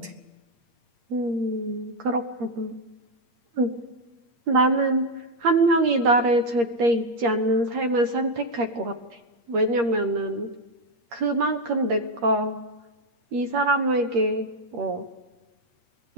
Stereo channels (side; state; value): left; late; 8.5 ms